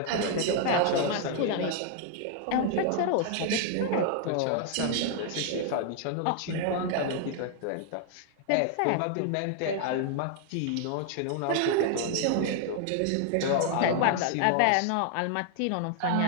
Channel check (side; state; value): both; different; correlation 0.00